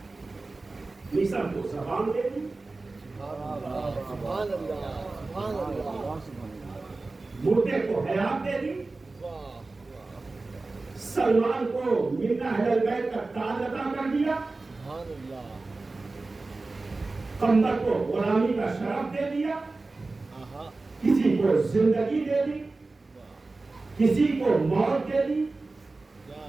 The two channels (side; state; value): left; quieter; 3.4 dB